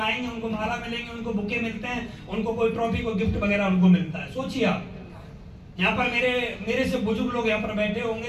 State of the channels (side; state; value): both; identical; correlation 1.00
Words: उनको माला मिलेंगे, उनको बुके मिलते हैं, उनको कोई ट्रॉफी, कोई गिफ्ट वगैरह उनको मिलता है। सोचिए आप, यहाँ पर मेरे से बुजुर्ग लोग यहाँ पर बैठे होंगे